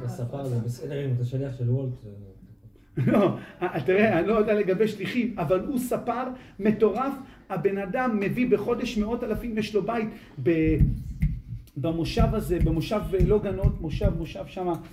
הספר זה בסדר אם אתה שליח של וולט. לא, תראה, אני לא יודע לגבי שליחים, אבל הוא ספר מטורף, הבן אדם מביא בחודש 100,000, יש לו בית במושב הזה, במושב לא גנות, מושב שם,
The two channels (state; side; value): identical; both; correlation 1.00